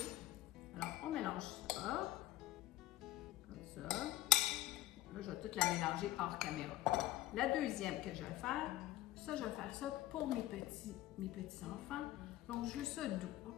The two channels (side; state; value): right; quieter; 15.8 dB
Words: Alors, on mélange ça, comme ça. Là, je vais tout la mélanger hors caméra. La deuxième que je vais faire, ça, je vais faire ça pour mes petits enfants. Donc, je veux ça doux,